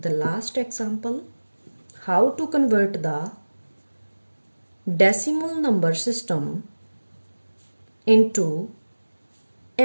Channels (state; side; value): inverted; both; correlation -1.00